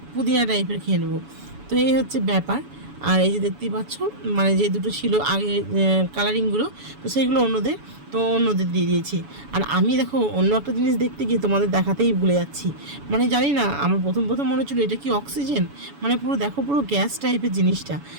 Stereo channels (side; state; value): left; late; 7.0 ms